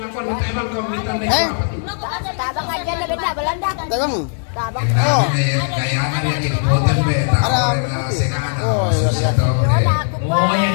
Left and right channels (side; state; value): right; silent; 66 dB below the other